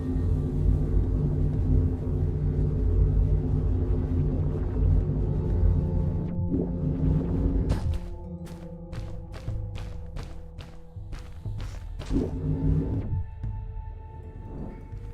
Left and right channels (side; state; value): both; identical; correlation 1.00